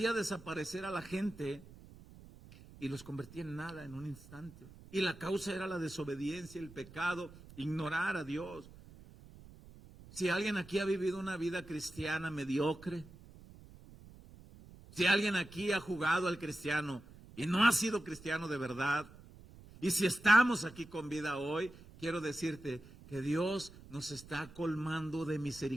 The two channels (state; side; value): noise; right; rumble, 20 dB below the sound